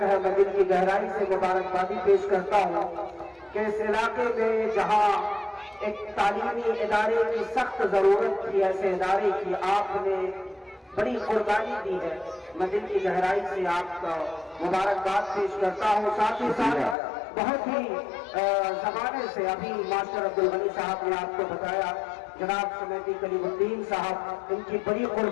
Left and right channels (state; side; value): drops out; right; at 16.9 s